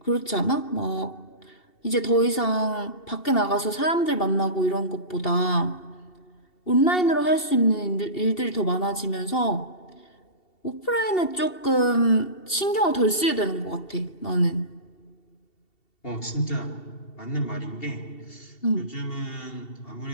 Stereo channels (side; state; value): right; late; 2.7 ms